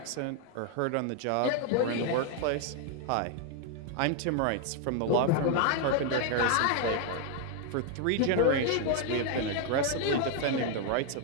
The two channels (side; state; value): both; different; correlation 0.01